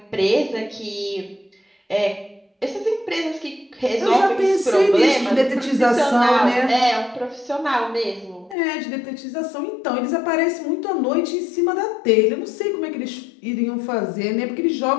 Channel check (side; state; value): right; drops out; at 8.6 s